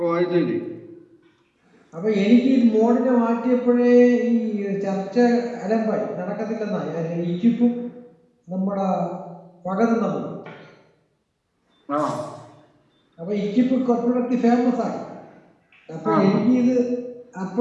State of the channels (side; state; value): both; identical; correlation 1.00